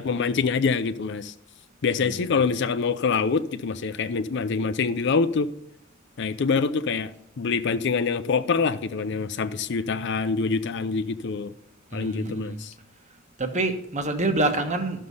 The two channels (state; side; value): quieter; right; 3.5 dB